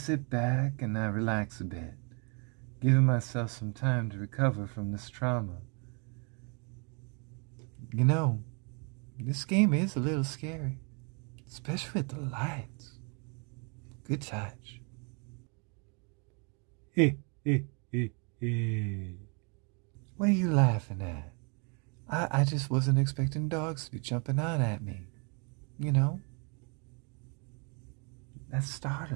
back and I relax a bit, giving myself some time to recover from this trauma. You know, this game is a little scary, especially with the lights. Good touch. Hey, hey, hey, hey. What are you laughing at? I just wasn't expecting dogs to be jumping out at me. You know? That's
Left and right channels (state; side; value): quieter; left; 35.4 dB